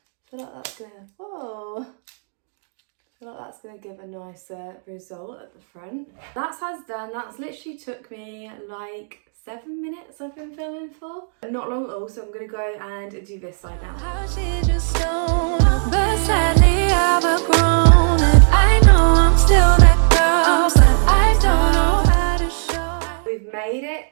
feel like that's gonna, whoa. I feel like that's going to give a nicer result at the front. That side's done. That's literally took me like 7 minutes I've been filming for. Not long at all, so I'm going to go and do this side now. But sadly I've outgrown it. I know I'm still that girl, but I don't know how to show. We've made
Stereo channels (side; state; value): left; silent; digital silence